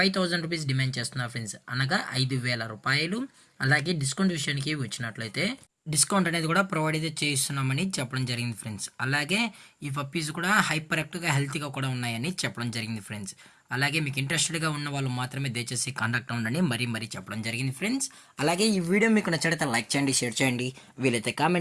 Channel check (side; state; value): both; identical; correlation 1.00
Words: రూపీస్ డిమాండ్ చేస్తున్నారు ఫ్రెండ్స్. అనగా 5000 రూపాయలు. అలాగే డిస్కౌంట్ విషయానికి వచ్చినట్లయితే డిస్కౌంట్ అనేది కూడా ప్రొవైడ్ అయితే చేస్తున్నామని చెప్పడం జరిగింది ఫ్రెండ్స్. అలాగే ఈ పప్పీస్ కూడా హైపర్ యాక్టివ్గా హెల్తీగా కూడా ఉన్నాయని చెప్పడం జరిగింది ఫ్రెండ్స్. అలాగే మీకు ఇంట్రెస్టెడ్గా ఉన్న వాళ్ళు మాత్రమే దయచేసి కాంటాక్ట్ అవ్వండి మరీ చెప్పడం జరిగింది ఫ్రెండ్స్. అలాగే ఈ వీడియో మీకు నచ్చితే లైక్ చేయండి, షేర్ చేయండి, వీలైతే